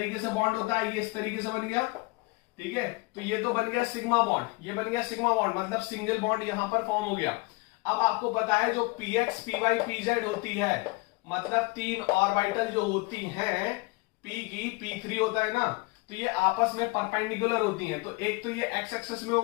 से बॉन्ड होता है, ये इस तरीके से बन गया, ठीक है। तो ये तो बन गया सिग्मा बॉन्ड, ये बन गया सिग्मा बॉन्ड, मतलब सिंगल बॉन्ड यहां पर फॉर्म हो गया। अब आपको पता है जो px py pz होती है, मतलब 3 ऑर्बिटल जो होती हैं, p की p3 होता है ना, तो ये आपस में परपेंडिकुलर होती हैं। तो एक तो ये x एक्सिस में हो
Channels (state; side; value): quieter; right; 25.0 dB